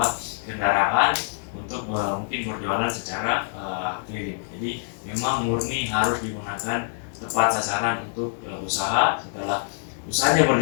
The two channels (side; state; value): right; silent; digital silence